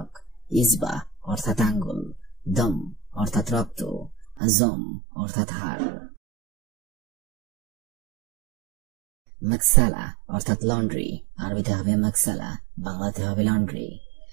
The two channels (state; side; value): drops out; left; at 4.4 s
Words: ইসবা অর্থাৎ আঙ্গুল, দম অর্থাৎ রক্ত, আজম অর্থাৎ হাড়। মাকসালা অর্থাৎ লন্ড্রি, আরবিতে হবে মাকসালা, বাংলাতে হবে লন্ড্রি।